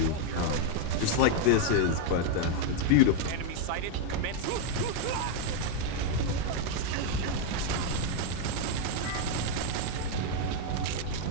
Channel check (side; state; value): both; different; correlation 0.00